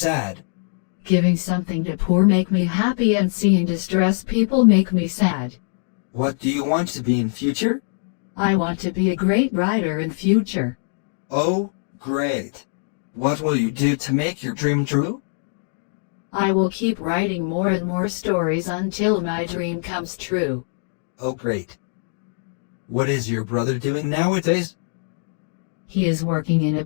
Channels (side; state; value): right; silent; digital silence